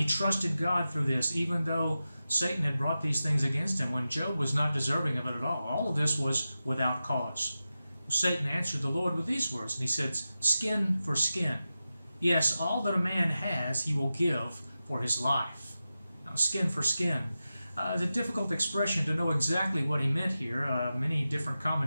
trusted God through this, even though Satan had brought these things against him when Job was not deserving of it at all. All of this was without cause. Satan answered the Lord with these words, and he said, Skin for skin. Yes, all that a man has he will give for his life. Now, skin for skin. It's a difficult expression to know exactly what he meant here. Many different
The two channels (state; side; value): inverted; both; correlation -0.92